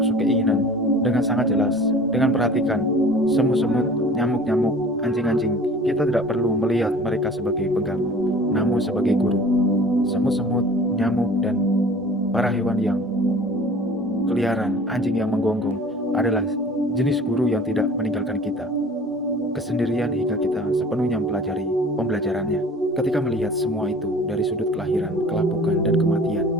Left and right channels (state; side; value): normal; both; correlation 0.45